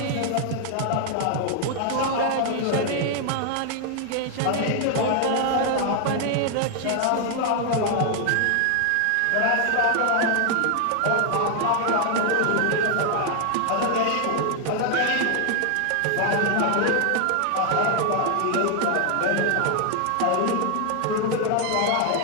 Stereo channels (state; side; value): different; both; correlation 0.00